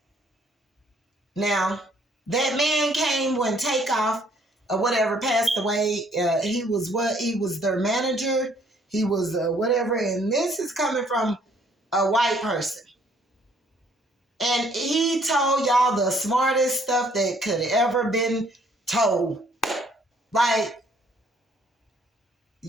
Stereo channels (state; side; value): normal; both; correlation 0.63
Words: Now, that man came when Takeoff or whatever passed away. He was their manager. He was whatever. And this is coming from a white person. And he told y'all the smartest stuff that could ever been told. Like,